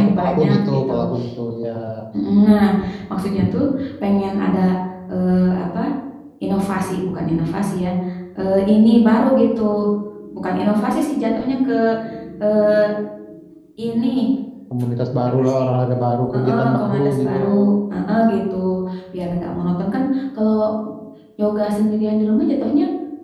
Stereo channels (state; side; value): identical; both; correlation 1.00